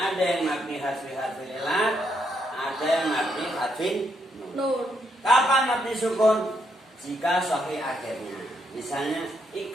yang mabni harfi ilat, ada yang mabni harfi Nun. Kapan mabni sukun? Jika sahih akhirnya. Misalnya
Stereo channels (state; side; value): normal; both; correlation 0.77